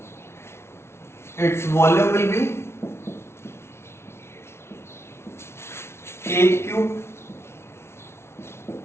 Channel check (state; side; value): late; right; 0.12 ms